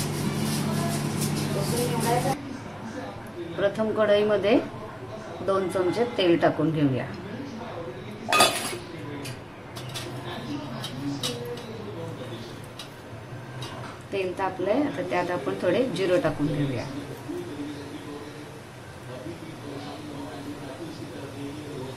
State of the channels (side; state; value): both; identical; correlation 1.00